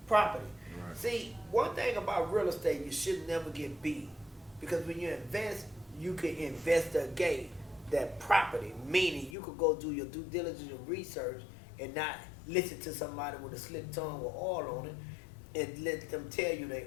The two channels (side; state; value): right; drops out; at 9.3 s